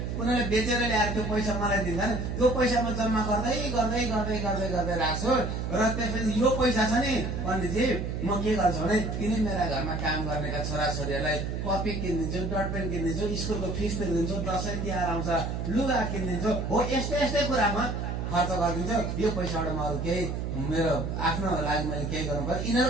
उनीहरूले बेचेर ल्याएर त्यो पैसा मलाई दिन्छन्, त्यो पैसा म जम्मा गर्दै गर्दै गर्दै गर्दै गर्दै राख्छु। र त्यसपछि यो पैसा छ नि पण्डितजी, म के गर्छु भने यिनी मेरा घरमा काम गर्नेका छोराछोरीहरूलाई कपी किनिदिन्छु, डटपेन किनिदिन्छु, स्कुलको फिस तिर्दिन्छु, दसैँ तिहार आउँछ लुगा किनिदिन्छु, हो यस्तै यस्तै कुरामा खर्च गरिदिन्छु। यो पैसाबाट म अरू केही मेरो आफ्नो लागि मैले केही गर्नु पर्यो,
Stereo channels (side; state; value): right; noise; hum, 3 dB below the sound